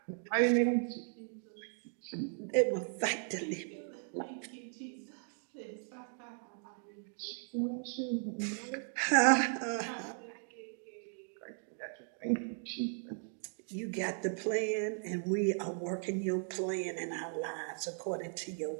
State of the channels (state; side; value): silent; left; 53 dB below the other